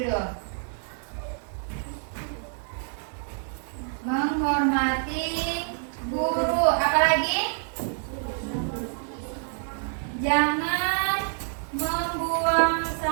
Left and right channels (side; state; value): left; silent; 60 dB below the other